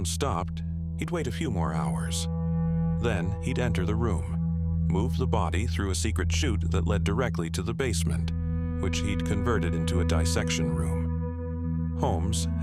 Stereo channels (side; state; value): both; identical; correlation 1.00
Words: stopped, he'd wait a few more hours. Then he'd enter the room, move the body through a secret chute that led directly to the basement, which he'd converted into a dissection room. Holmes